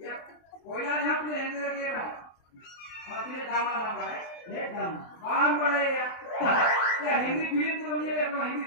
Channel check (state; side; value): late; right; 23 ms